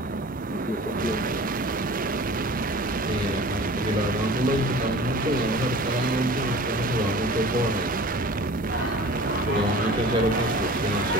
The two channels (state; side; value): normal; both; correlation 0.41